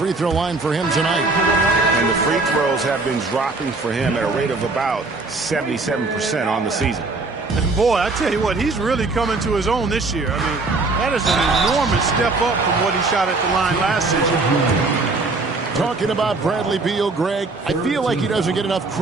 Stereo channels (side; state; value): left; quieter; 3.5 dB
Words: throw line for him tonight. And the free throws have been dropping for him at a rate of about 77% on the season. And boy, I tell you what, he's really coming to his own this year. I mean, that is an enormous step up from what he shot at the line last season. Talking about Bradley Beal, Greg, I feel like he doesn't get enough